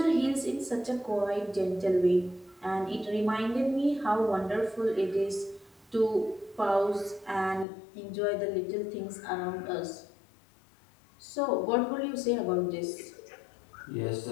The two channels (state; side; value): drops out; right; at 7.7 s